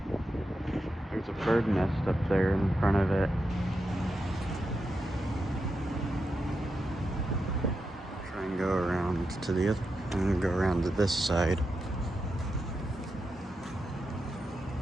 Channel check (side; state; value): both; normal; correlation 0.87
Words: There's a bird nest up there in front of it. Try and go around to the other, and go around to this side.